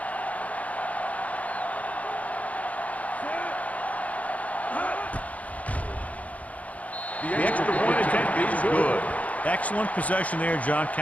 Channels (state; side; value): late; right; 0.070 ms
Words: The extra point attempt is good. Excellent possession there, John,